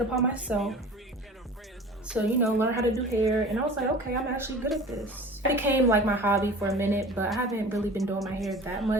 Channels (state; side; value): normal; both; correlation 0.40